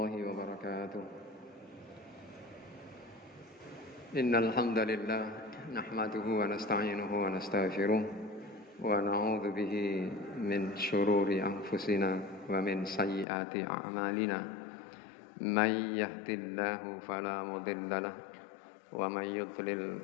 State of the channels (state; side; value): drops out; right; at 13.2 s